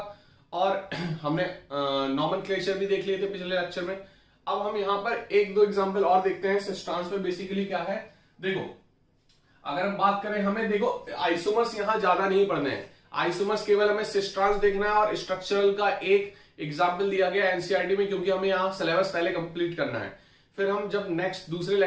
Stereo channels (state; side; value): identical; both; correlation 1.00